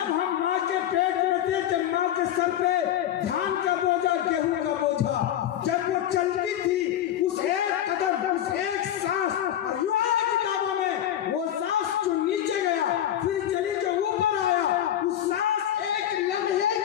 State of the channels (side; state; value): right; quieter; 11.2 dB